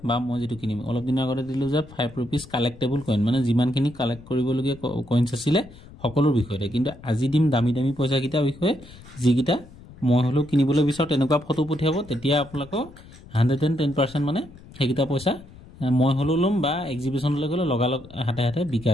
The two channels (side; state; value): left; noise; rumble, 20 dB below the sound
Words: বা মই যেটো কিনিম অলপ দিন আগতে দিলো যে 5 रुपीस কালেক্টেবল কইন মানে যিমানখিনি কালেক্ট কৰিবলগীয়া কইনছ আছিল সকলোৰ বিষয়ে কিন্তু আজি দিম দামী দামী পইচা কিটা বিষয়ে যিকিটা মই হলো কিনিবলৈ বিচাৰ তেনেকুৱা ফটো পঠিয়াব তেতিয়া আপোনালোক 110% মানে সেইকিটা পইচা মই হলো লম বা এক্সিবিশনলৈ গলে লগালগ হাতে হাতে